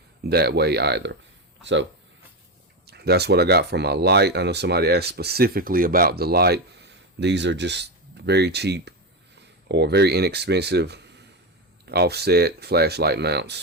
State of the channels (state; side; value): normal; both; correlation 0.13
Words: that way either. So that's what I got for my light. I know somebody asked specifically about the light. These are just very cheap or very inexpensive offset flashlight